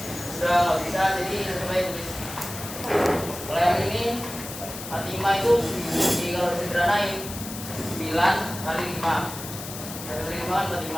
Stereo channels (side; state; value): left; noise; hiss, 10 dB below the sound